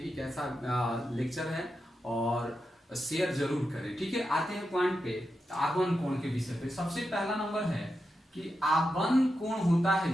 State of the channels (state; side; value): normal; both; correlation 0.88